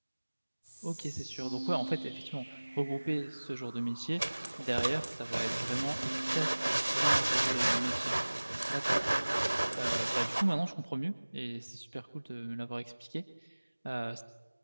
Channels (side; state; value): both; inverted; correlation -1.00